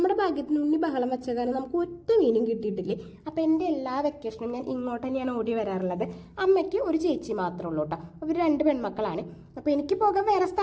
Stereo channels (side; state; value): both; identical; correlation 1.00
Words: ഭാഗ്യത്തിന് ഉണ്ണി ബഹളം വെച്ച കാരണം നമുക്ക് ഒറ്റ മീനും കിട്ടിയിട്ടില്ലേ. അപ്പം എൻ്റെ എല്ലാ വെക്കേഷനും ഞാൻ ഇങ്ങോട്ട് തന്നെയാണ് ഓടി വരാറുള്ളത്. അമ്മയ്ക്ക് ഒരു ചേച്ചി മാത്രമേ ഉള്ളൂ കേട്ടോ. അവർ 2 പെൺമക്കളാണ്. അപ്പോൾ എനിക്ക് പോകാൻ വേറെ